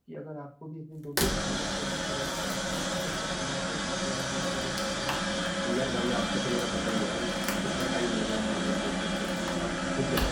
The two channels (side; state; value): both; identical; correlation 1.00